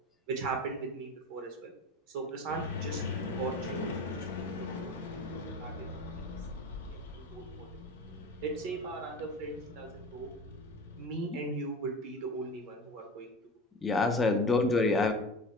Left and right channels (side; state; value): both; normal; correlation 0.31